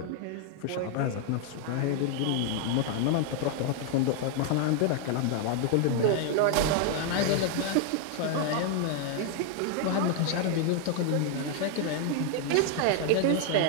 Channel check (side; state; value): both; different; correlation 0.00